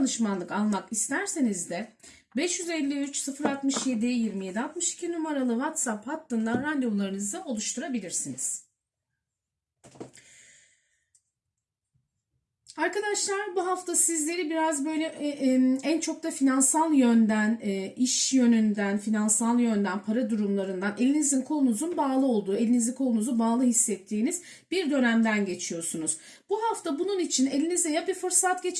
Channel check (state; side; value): identical; both; correlation 1.00